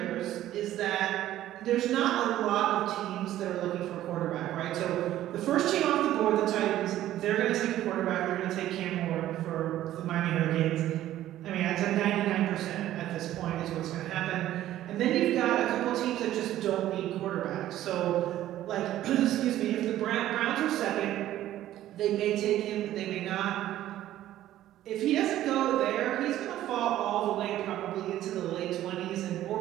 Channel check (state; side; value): quieter; left; 13.4 dB